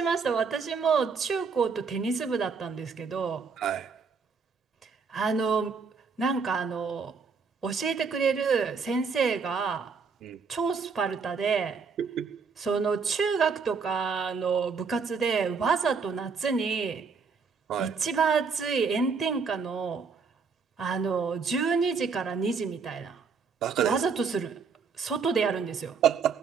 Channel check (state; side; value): quieter; left; 5.4 dB